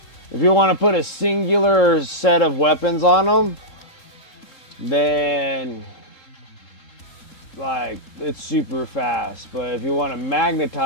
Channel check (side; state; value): right; late; 3.7 ms